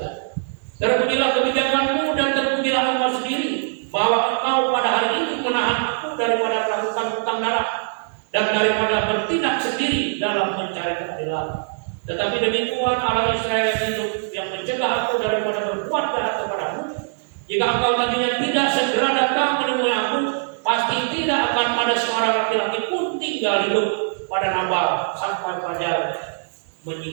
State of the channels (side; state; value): left; silent; digital silence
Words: "Terpujilah kebijakanmu dan terpujilah engkau sendiri, bahwa engkau pada hari ini menahan aku daripada melakukan hutang darah dan daripada bertindak sendiri dalam mencari keadilan. Tetapi demi Tuhan Allah Israel yang hidup, yang mencegah aku daripada berbuat jahat kepadamu, jika engkau tadinya tidak segera datang menemui aku, pasti tidak akan ada seorang laki-laki pun tinggal hidup pada Nabal sampai fajar